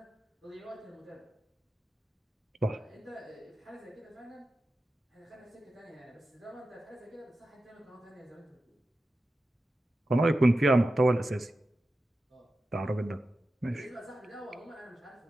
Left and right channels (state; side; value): normal; both; correlation 0.92